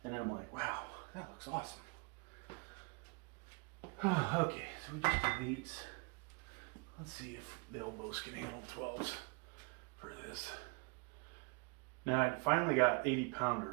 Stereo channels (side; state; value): left; quieter; 30.2 dB